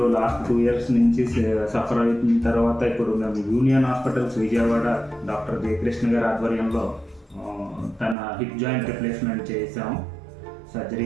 లాస్ట్ 2 years నుంచి సఫర్ అయిన తర్వాత ఇప్పుడు మేము union hospitals Vijayawada doctor Jayakrishna గారి ఆధ్వర్యంలో తన హిప్ జాయింట్ రిప్లేస్మెంట్ చేసాము.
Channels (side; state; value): left; drops out; at 8.2 s